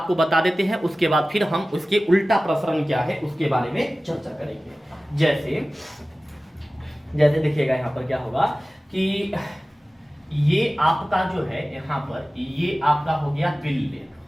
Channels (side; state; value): both; normal; correlation 0.97